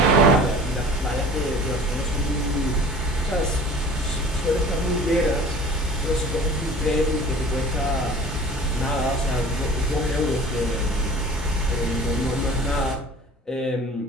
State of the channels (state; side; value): normal; both; correlation 0.44